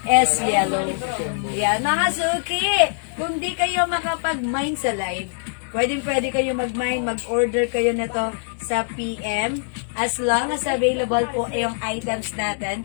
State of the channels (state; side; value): silent; right; digital silence